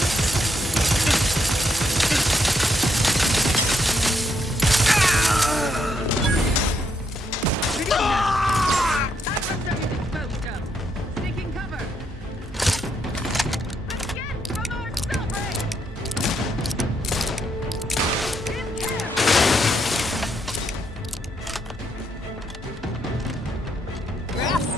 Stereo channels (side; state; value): both; normal; correlation 0.77